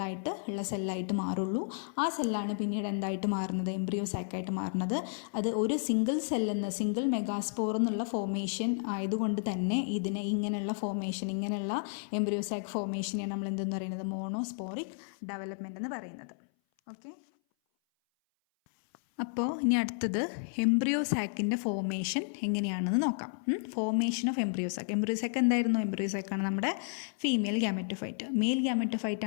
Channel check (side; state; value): right; silent; 56 dB below the other